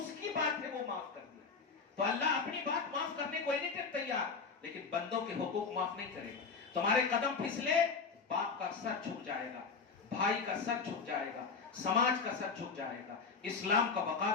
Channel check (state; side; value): quieter; right; 5.0 dB